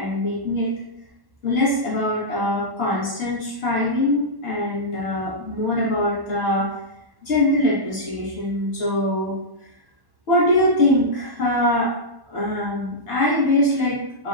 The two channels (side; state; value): left; late; 1.1 ms